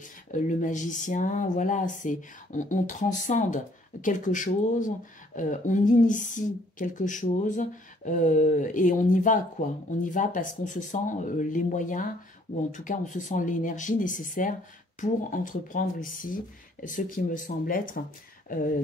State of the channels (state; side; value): normal; both; correlation 0.62